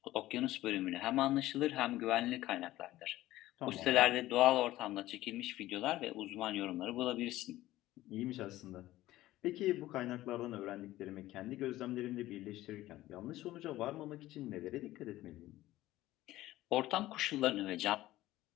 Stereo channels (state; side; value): quieter; right; 15.9 dB